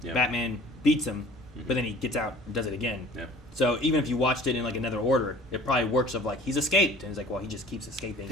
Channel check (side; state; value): both; normal; correlation 0.49